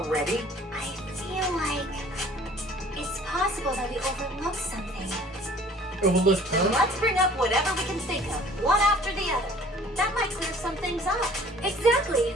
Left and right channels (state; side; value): normal; both; correlation 0.51